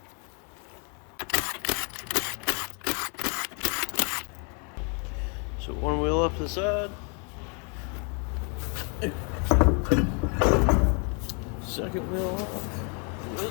So one wheel up to the side. Second wheel off.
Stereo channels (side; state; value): right; quieter; 36.9 dB